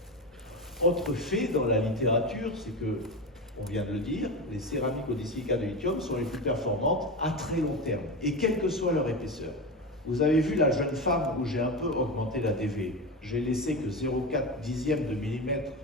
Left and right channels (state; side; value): normal; both; correlation 0.20